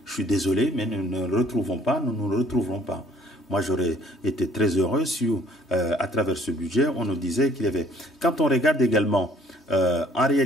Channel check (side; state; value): both; normal; correlation 0.58